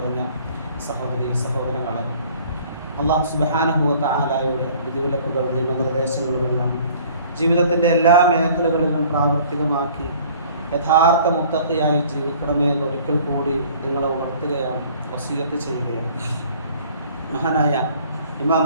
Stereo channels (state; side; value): inverted; both; correlation -0.53